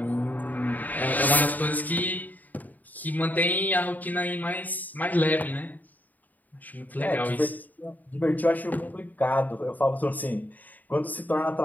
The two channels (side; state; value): right; late; 0.082 ms